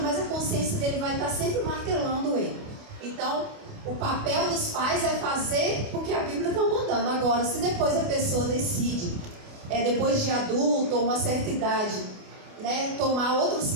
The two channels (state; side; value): late; left; 28 ms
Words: a consciência dele vai estar sempre martelando ele. Então, o papel dos pais é fazer o que a Bíblia está mandando. Agora, se depois a pessoa decide, depois de adulto ou uma certa idade, né, tomar outros